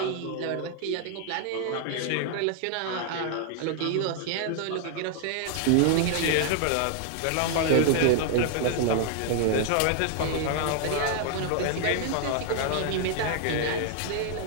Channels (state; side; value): different; both; correlation 0.00